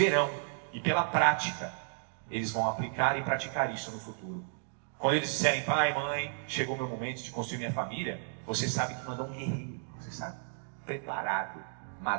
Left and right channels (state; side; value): silent; left; 56 dB below the other